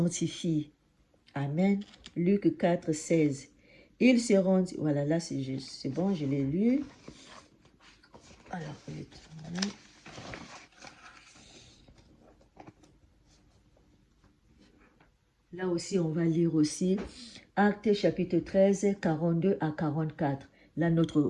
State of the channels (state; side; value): identical; both; correlation 1.00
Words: Amen. Luc 4, 16. Ils se rendent... Voilà, là c'est bon, je l'ai lu. Alors, là aussi, on va lire aussi Actes chapitre 13, 42 à 44. Là, notre